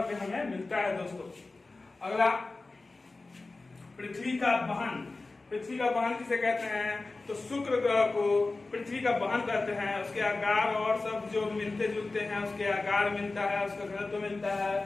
पे हमें मिलता है दोस्तों। अगला पृथ्वी का वहन। पृथ्वी का वहन किसे कहते हैं? तो शुक्र ग्रह को पृथ्वी का वहन करते हैं। उसके आकार और सब जो मिलते जुलते हैं, उसके आकार मिलता है, उसका घनत्व मिलता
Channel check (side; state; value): right; quieter; 3.4 dB